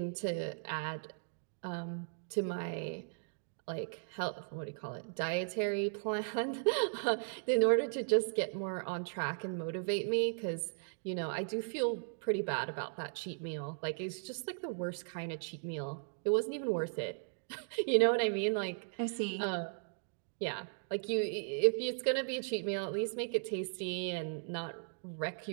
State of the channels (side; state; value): left; silent; digital silence